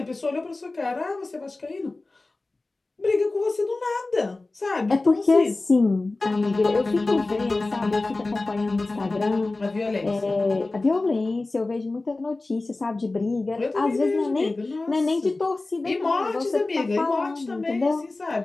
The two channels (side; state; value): right; quieter; 3.2 dB